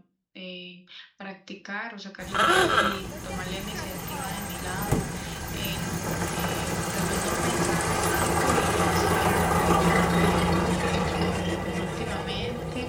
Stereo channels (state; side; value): identical; both; correlation 1.00